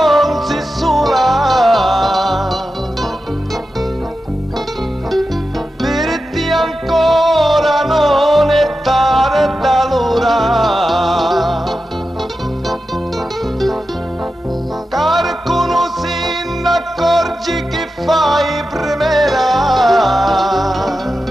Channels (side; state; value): both; normal; correlation 0.91